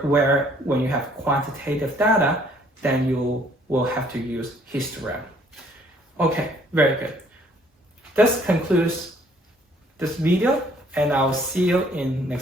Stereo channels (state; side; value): normal; both; correlation 0.61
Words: Where when you have quantitative data, then you will have to use histogram. Okay, very good. This concludes this video, and I'll see you in